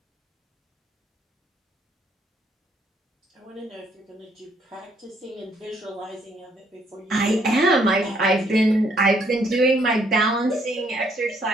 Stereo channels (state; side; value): normal; both; correlation 0.68